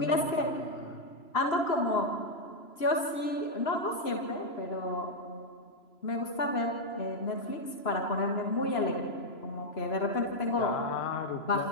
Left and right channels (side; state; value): right; late; 3.0 ms